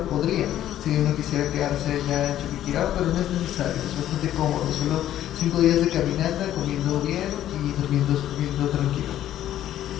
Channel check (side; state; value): right; quieter; 12.2 dB